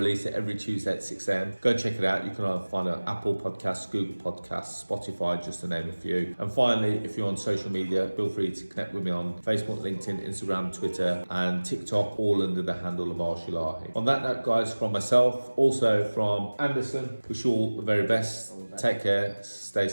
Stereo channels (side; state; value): both; inverted; correlation -1.00